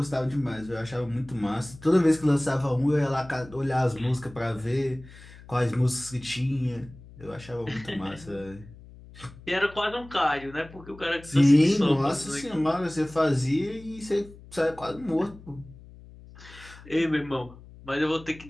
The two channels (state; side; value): noise; left; hum, 20 dB below the sound